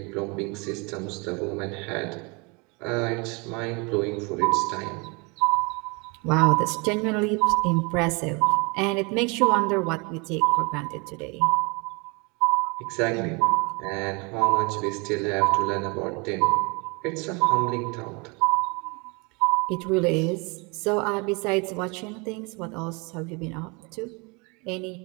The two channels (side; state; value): left; quieter; 29.8 dB